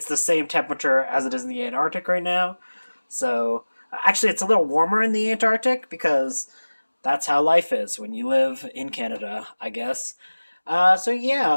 the same temperature as it is in the Antarctic right now. So, actually, it's a little warmer in the Antarctic because that's how life is when you live in Canada, I guess. So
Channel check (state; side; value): inverted; both; correlation -1.00